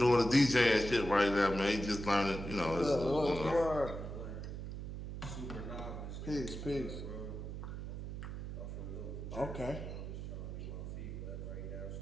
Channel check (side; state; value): right; noise; hum, 7 dB below the sound